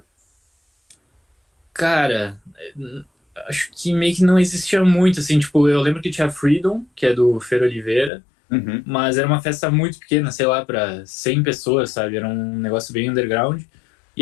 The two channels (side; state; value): right; drops out; at 8.1 s